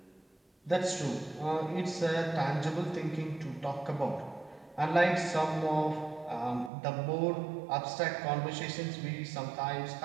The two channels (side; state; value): left; drops out; at 6.7 s